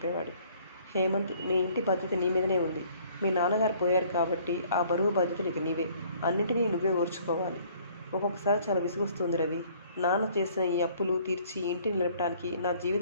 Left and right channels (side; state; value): both; inverted; correlation -0.58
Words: హేమంత్, మీ ఇంటి బాధ్యత నీ మీదనే ఉంది. మీ నాన్నగారు పోయారు కాబట్టి ఆ బరువు బాధ్యతలు ఇక నీవే. అన్నిటినీ నువ్వే ఓర్చుకోవాలి. ఒక్కొక్కసారి చాలా విసుగొస్తుంది రవి. నాన్న చేసిన ఈ అప్పులు తీర్చి ఇంటిని నిలపడానికి నా